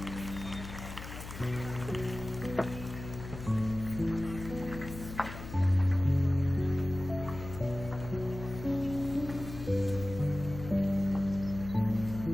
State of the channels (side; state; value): left; noise; hum, 10 dB below the sound